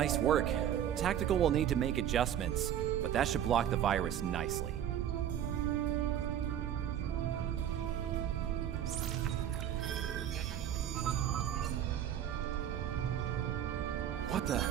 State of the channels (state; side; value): quieter; left; 10.3 dB